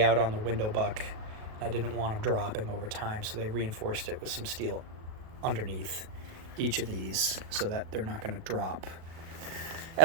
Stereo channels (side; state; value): left; late; 37 ms